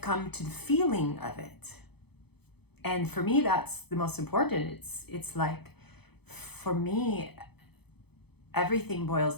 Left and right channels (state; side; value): late; right; 0.98 ms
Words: to the feeling of it. And for me, that's the most important. It's like, for me, everything boils